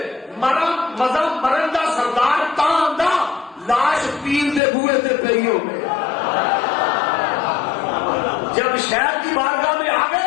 مزہ مرن دا سردار تاں دا لاش پیر دے بوئے تے پئی ہو گئے. جب شہر کی بارگاہ میں آ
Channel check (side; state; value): right; drops out; at 4.6 s